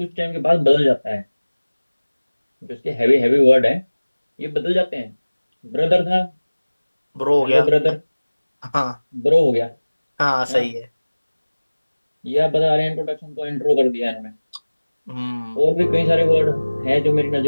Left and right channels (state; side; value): inverted; both; correlation -1.00